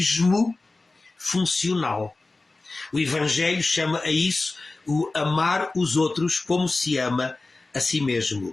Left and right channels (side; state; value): right; quieter; 3.3 dB